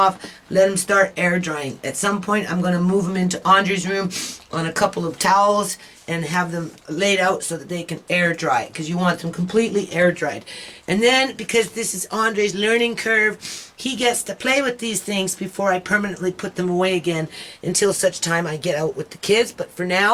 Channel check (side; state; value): both; identical; correlation 1.00